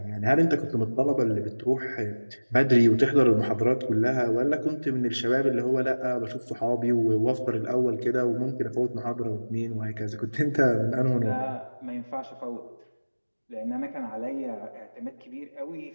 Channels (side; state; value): both; inverted; correlation -1.00